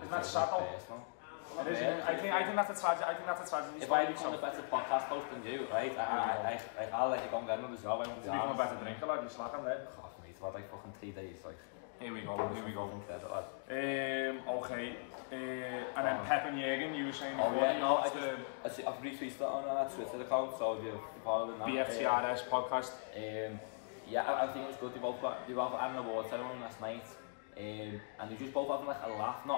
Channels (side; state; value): right; silent; digital silence